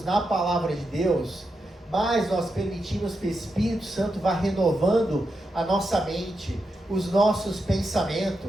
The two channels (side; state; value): both; normal; correlation 0.86